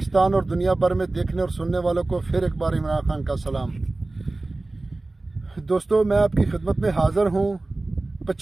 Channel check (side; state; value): left; quieter; 3.1 dB